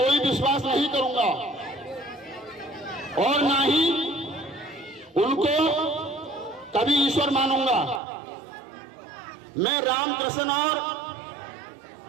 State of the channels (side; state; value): left; drops out; at 8.0 s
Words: विश्वास नहीं करूंगा और ना ही उनको कभी ईश्वर मानूंगा। मैं राम कृष्ण और